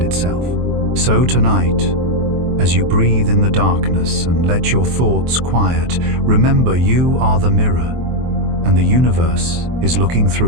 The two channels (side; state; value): left; late; 23 ms